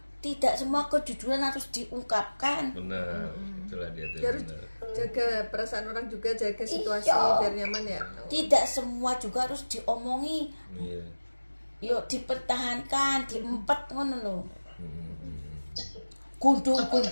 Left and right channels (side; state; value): both; inverted; correlation -1.00